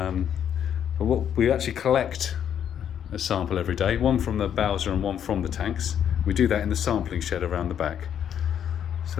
what we actually collect a sample every day, one from the Bowser and one from the tanks. We do that in the sampling shed around the back.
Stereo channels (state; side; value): quieter; right; 9.2 dB